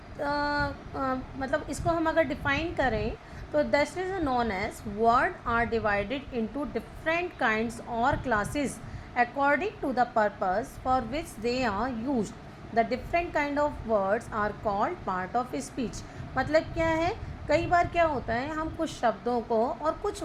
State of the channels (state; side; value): identical; both; correlation 1.00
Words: मतलब इसको हम अगर डिफाइन करें तो this is known as word are divided into different kinds or classes according to the purpose for which they are used. The different kind of words are called part of speech. मतलब क्या है, कई बार क्या होता है, हम कुछ शब्दों को और कुछ